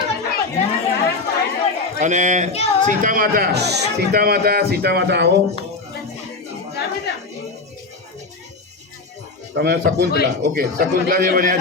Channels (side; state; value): right; quieter; 3.7 dB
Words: અને સીતા માતા આવો. તમે શકુંતલા, ઓકે, શકુંતલા જે બન્યા